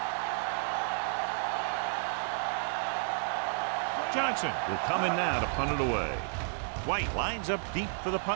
Johnson will come in now to punt it away. White lines up deep for the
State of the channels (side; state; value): left; silent; digital silence